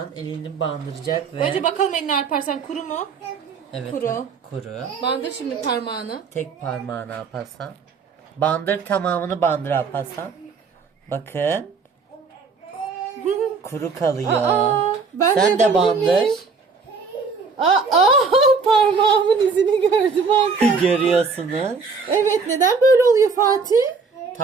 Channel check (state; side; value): quieter; left; 4.9 dB